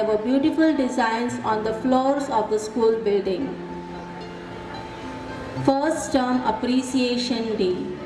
were beautiful designs on the floors of the school building. First Term Appreciation Day.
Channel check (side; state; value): both; identical; correlation 1.00